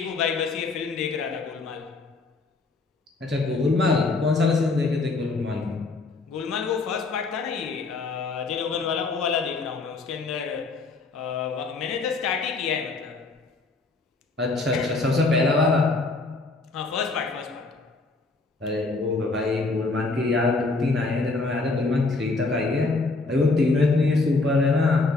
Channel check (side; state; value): right; quieter; 3.6 dB